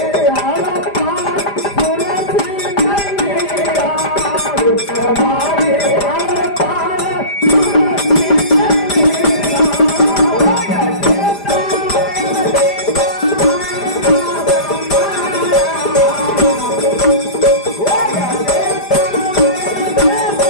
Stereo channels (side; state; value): right; late; 5.0 ms